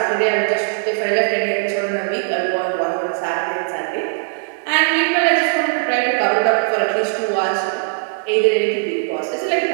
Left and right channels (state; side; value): silent; left; digital silence